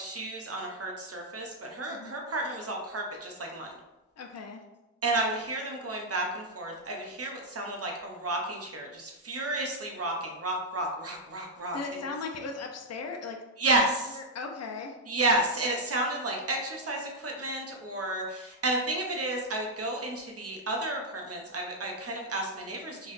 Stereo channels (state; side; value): normal; both; correlation -0.04